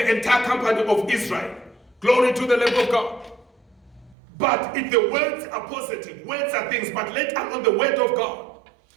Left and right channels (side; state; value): left; drops out; at 4.2 s